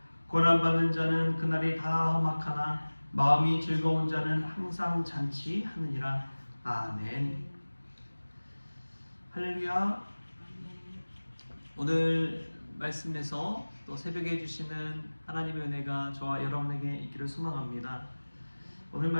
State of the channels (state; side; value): inverted; both; correlation -1.00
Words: 고난받는 자는 그날이 다 험악하나 마음이 즐거운 자는 항상 잔치하느니라. 아멘. 할렐루야. 오늘 말씀에서 또 새벽에 주시는 하나님의 은혜가 저와 여러분에게 있기를 소망합니다. 오늘